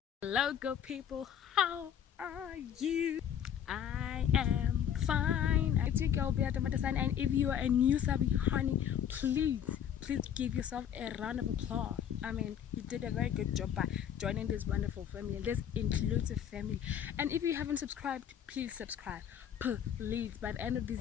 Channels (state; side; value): quieter; right; 9.1 dB